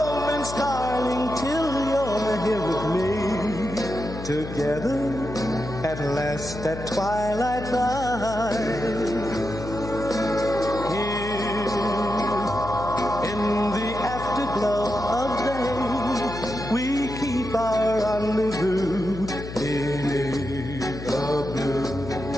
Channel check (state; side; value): noise; left; hum, 10 dB below the sound